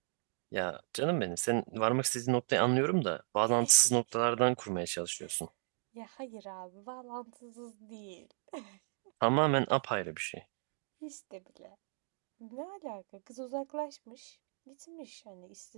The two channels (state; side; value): silent; left; 54 dB below the other